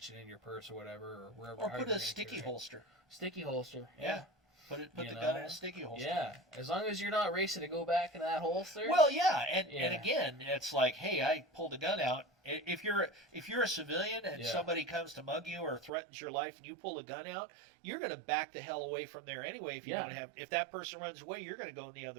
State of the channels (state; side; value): drops out; left; at 15.9 s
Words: it in your purse or whatever, or wherever. Or put a sticky holster. Sticky holster. Yeah. Put the gun in a sticky holster. Yeah, as long as you're not racing to go back in that holster. Well, yeah, and again, it's like, hey, I pulled a gun out. If you're a civilian and somebody comes to mug you or threatens your life and you pull a gun out, you're going to back the hell away from there anyway. If that person runs away, you're going to go in the